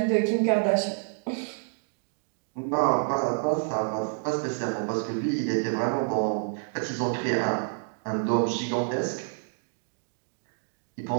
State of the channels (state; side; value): silent; left; digital silence